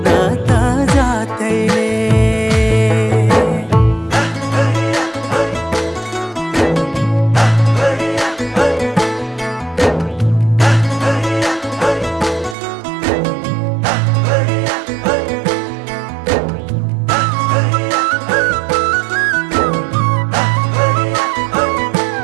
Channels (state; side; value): drops out; left; at 12.6 s